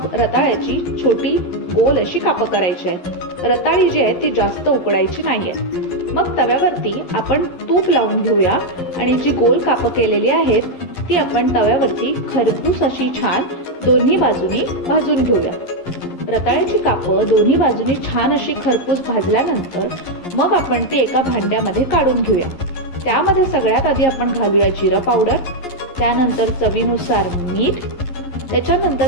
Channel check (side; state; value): right; late; 11 ms